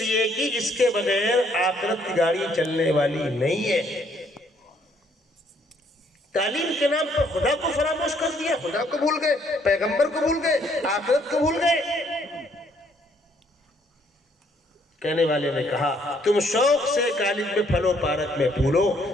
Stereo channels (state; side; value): normal; both; correlation 0.67